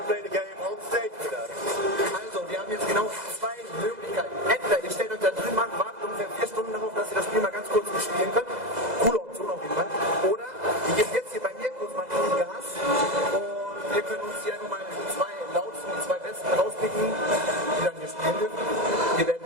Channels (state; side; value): late; left; 2.0 ms